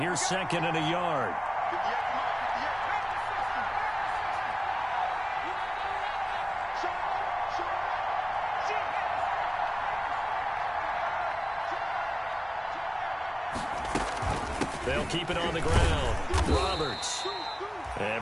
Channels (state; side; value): identical; both; correlation 1.00